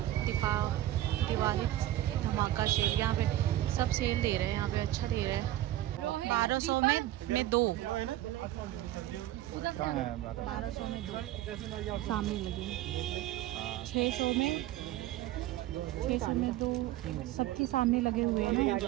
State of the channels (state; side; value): quieter; left; 14.4 dB